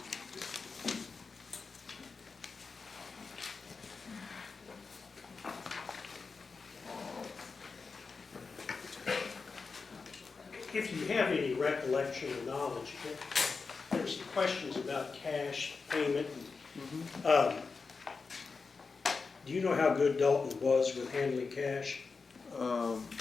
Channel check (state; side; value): quieter; right; 4.7 dB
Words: If you have any recollection or knowledge, there were some questions about cash payment. And, do you know how good Dalton was with handling cash?